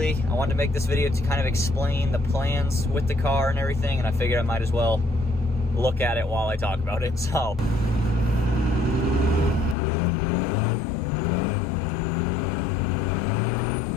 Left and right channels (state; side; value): drops out; right; at 9.8 s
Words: I wanted to make this video to kind of explain the plans with the car and everything, and I figured I might as well look at it while I talk about it. So